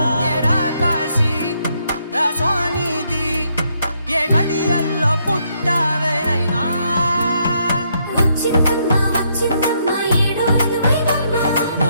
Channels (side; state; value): both; inverted; correlation -0.74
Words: ఏరా కాశీ రాసోనిది ఏ గడియల్లో పుట్టావేనైనా